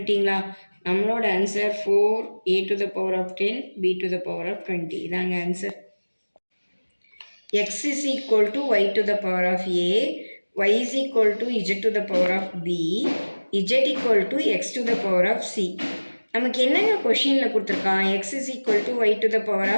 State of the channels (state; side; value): inverted; both; correlation -1.00